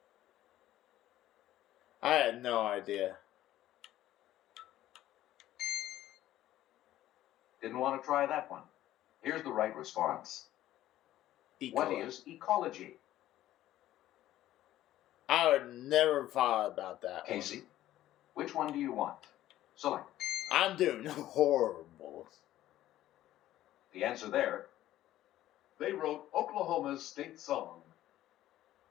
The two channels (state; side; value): quieter; right; 13.8 dB